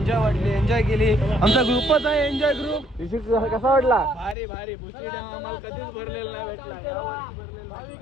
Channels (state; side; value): drops out; right; at 4.4 s